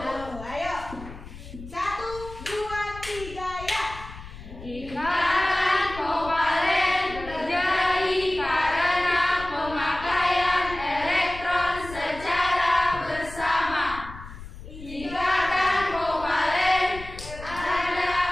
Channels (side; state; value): left; noise; rumble, 14 dB below the sound